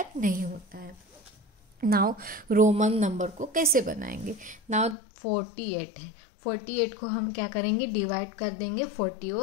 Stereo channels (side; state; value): right; drops out; at 5.0 s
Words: नहीं होता है। नाउ रोमन नंबर को कैसे बनाएंगे। नाउ 48 है, 48 को हम क्या करेंगे, डिवाइड कर देंगे 40